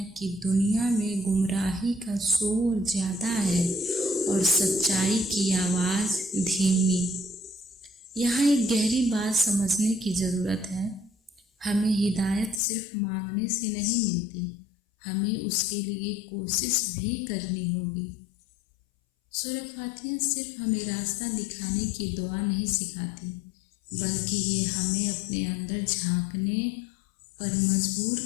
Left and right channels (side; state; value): right; drops out; at 12.6 s